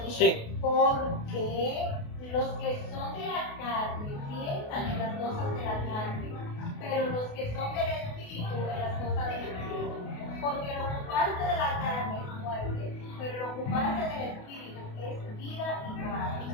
Dice, Sí. porque los que son de la carne piensan en las cosas de la carne, pero los que son del Espíritu en las cosas del Espíritu. Porque el ocuparse de la carne es muerte, pero el ocuparse del Espíritu es vida y paz.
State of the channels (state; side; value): late; right; 28 ms